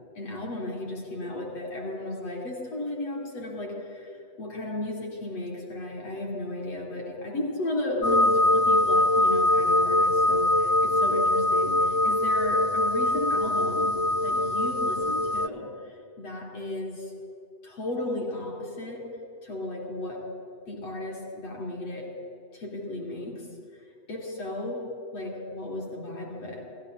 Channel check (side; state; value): right; late; 8.1 ms